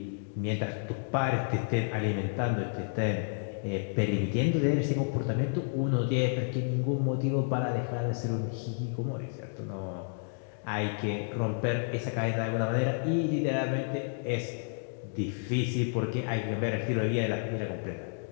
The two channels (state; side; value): silent; right; digital silence